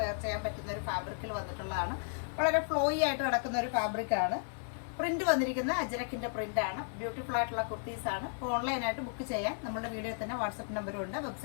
വെയർ ചെയ്യാൻ പറ്റുന്ന ഒരു ഫാബ്രിക്കിൽ വന്നിട്ടുള്ളതാണ്. വളരെ ഫ്ലോയി ആയിട്ട് കിടക്കുന്ന ഒരു ഫാബ്രിക് ആണ്. പ്രിന്റ് വന്നിരിക്കുന്ന അജ്രക്കിന്റെ പ്രിന്റ് ആണ്. ബ്യൂട്ടിഫുൾ ആയിട്ടുള്ള കുർത്തീസ് ആണ്. ഓൺലൈനായിട്ട് ബുക്ക് ചെയ്യാൻ നമ്മുടെ വീഡിയോയിൽ തന്നെ വാട്സപ്പ് നമ്പറും ഉണ്ട്.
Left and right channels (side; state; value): right; silent; 55 dB below the other